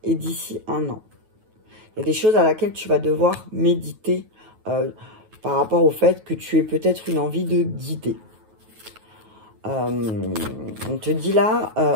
et d'ici un an. Il y a des choses à laquelle tu vas devoir méditer par rapport au fait que tu aies peut-être une envie de guider. On te dit là,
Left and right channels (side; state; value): left; late; 9.3 ms